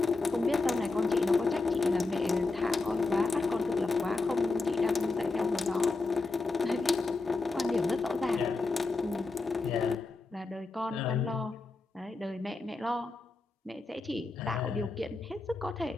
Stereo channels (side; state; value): right; quieter; 3.5 dB